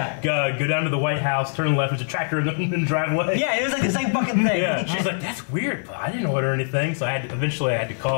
Go down to the White House, turn left. There's a tractor in the driveway. Yeah, it was like the same fucking thing. Yeah. She's like, that's weird, but I didn't order anything. So eventually I had to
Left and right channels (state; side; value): silent; right; digital silence